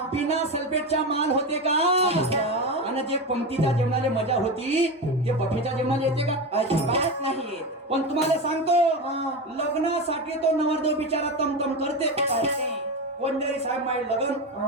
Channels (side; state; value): both; normal; correlation 0.19